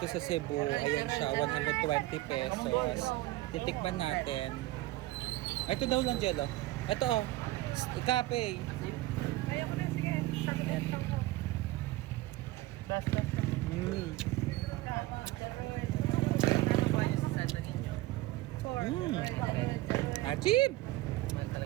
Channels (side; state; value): left; quieter; 17.8 dB